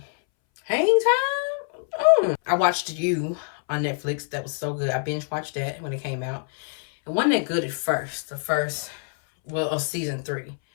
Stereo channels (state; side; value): silent; right; 61 dB below the other